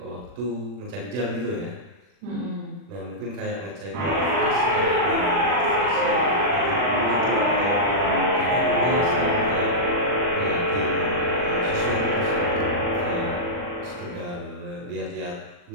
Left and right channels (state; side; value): late; left; 40 ms